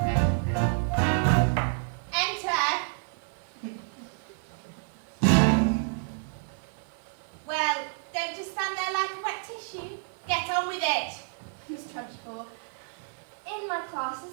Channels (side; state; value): left; silent; 55 dB below the other